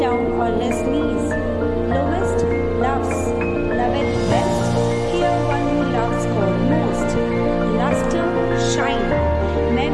on less knees. Lowest, loves. Loveth best. Here one who loves God most. Luster, shine.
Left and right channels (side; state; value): both; identical; correlation 1.00